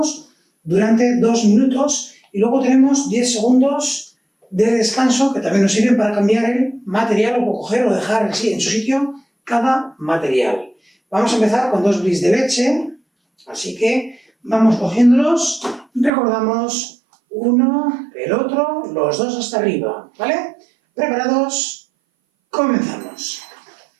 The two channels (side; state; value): left; drops out; at 16.1 s